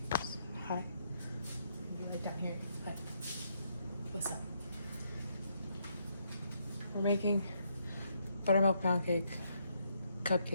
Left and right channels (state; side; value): inverted; both; correlation -0.75